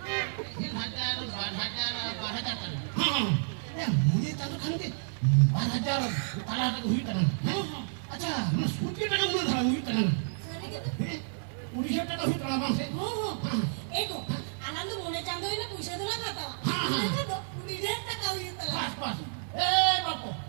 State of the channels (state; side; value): silent; left; 57 dB below the other